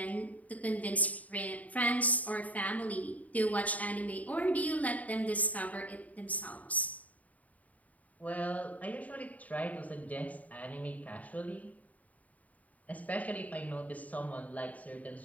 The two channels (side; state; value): right; late; 0.072 ms